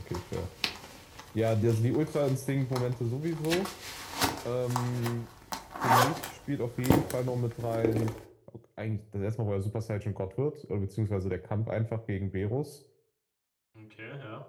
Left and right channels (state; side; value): identical; both; correlation 1.00